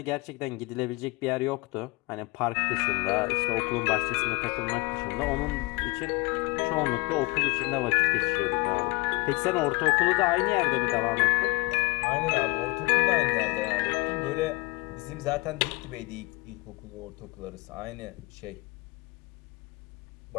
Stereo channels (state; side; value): quieter; right; 25.8 dB